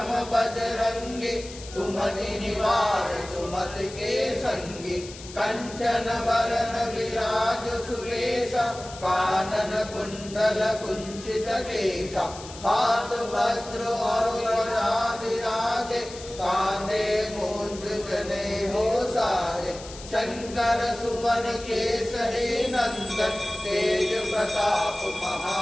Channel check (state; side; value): noise; left; hiss, 15 dB below the sound